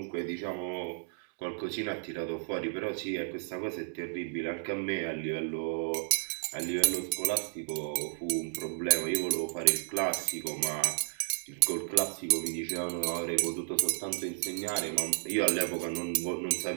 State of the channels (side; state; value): left; silent; 56 dB below the other